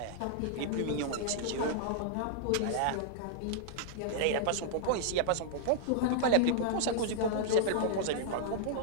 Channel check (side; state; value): both; different; correlation -0.01